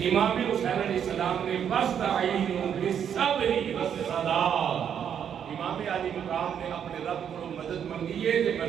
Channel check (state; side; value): quieter; left; 8.5 dB